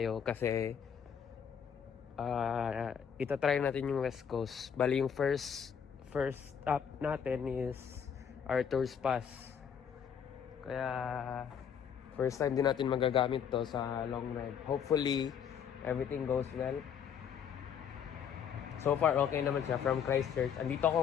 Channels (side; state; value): right; quieter; 7.8 dB